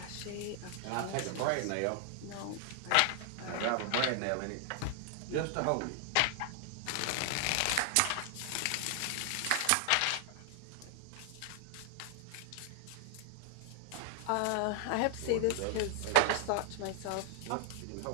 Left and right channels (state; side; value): different; both; correlation 0.00